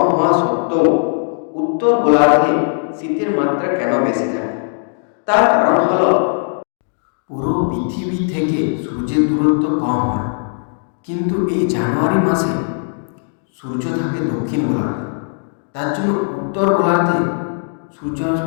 হওয়া সত্ত্বেও উত্তর গোলার্ধে শীতের মাত্রা কেন বেশি থাকে? তার কারণ হল পুরো পৃথিবী থেকে সূর্যের দূরত্ব কম হয়, কিন্তু এই জানুয়ারি মাসে সূর্য থাকে দক্ষিণ গোলার্ধে। তার জন্য উত্তর গোলার্ধে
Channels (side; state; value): right; silent; digital silence